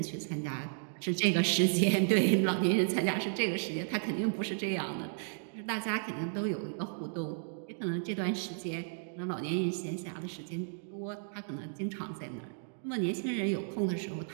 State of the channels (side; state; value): left; silent; digital silence